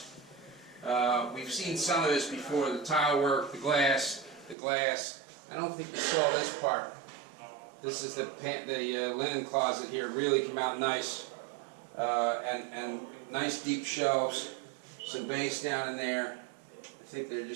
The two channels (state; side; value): drops out; left; at 4.5 s